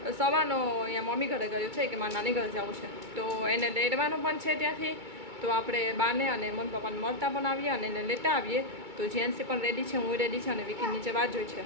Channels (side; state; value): left; late; 2.2 ms